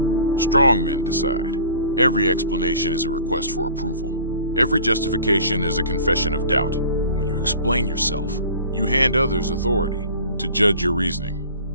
Strong men decide. Every explanation is a request for approval. Every justification is a confession of doubt. When you explain yourself, you hand others authority to judge your reasoning.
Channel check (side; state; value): both; inverted; correlation -0.44